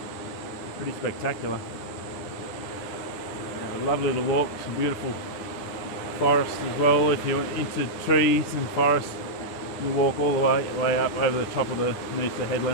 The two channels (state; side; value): late; right; 10 ms